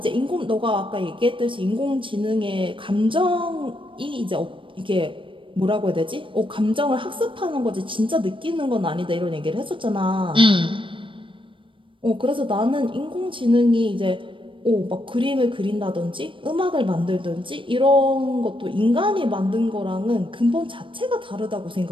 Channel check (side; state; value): left; late; 0.25 ms